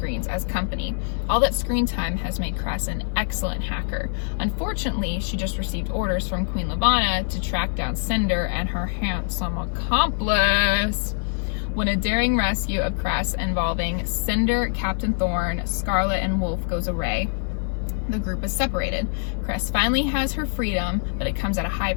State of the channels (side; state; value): right; silent; 58 dB below the other